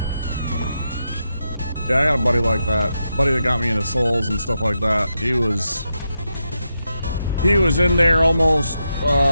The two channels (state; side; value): inverted; both; correlation -0.85